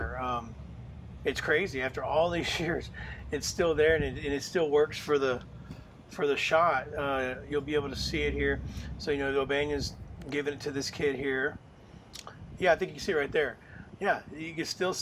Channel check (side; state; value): both; identical; correlation 1.00